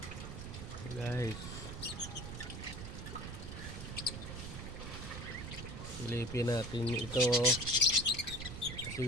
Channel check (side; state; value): right; noise; rumble, 8 dB below the sound